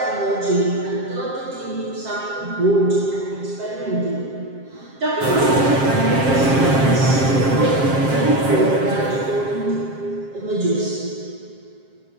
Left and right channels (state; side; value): late; left; 7.5 ms